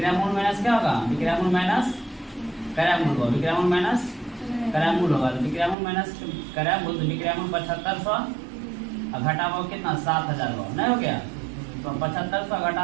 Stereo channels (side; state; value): left; drops out; at 5.8 s